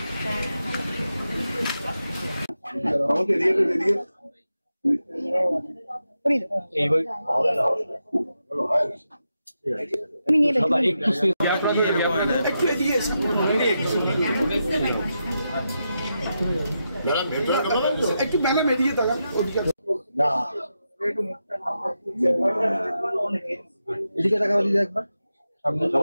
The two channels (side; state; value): both; inverted; correlation -0.87